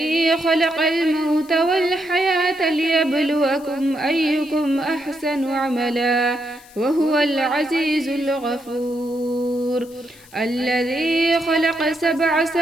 خلق الموت والحياة ليبلوكم أيكم أحسن عملا وهو العزيز الغفور، الذي خلق 7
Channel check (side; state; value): left; noise; hiss, 24 dB below the sound